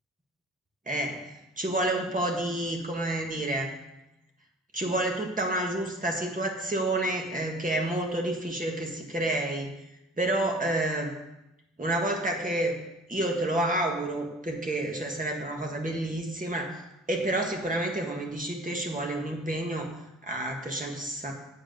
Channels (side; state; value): both; normal; correlation 0.46